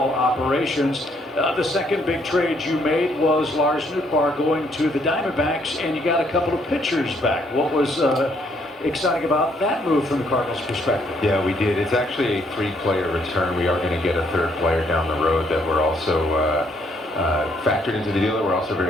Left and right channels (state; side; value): normal; both; correlation 0.69